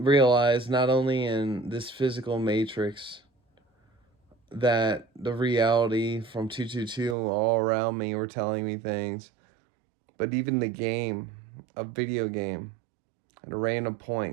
not only in this physical matrix that the reality from 222 all around me were telling me things, but even the game, a video game, at a random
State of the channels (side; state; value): left; drops out; at 7.2 s